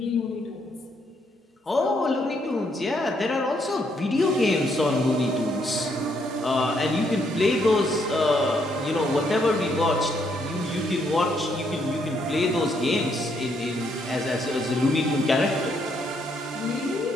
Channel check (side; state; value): both; normal; correlation 0.73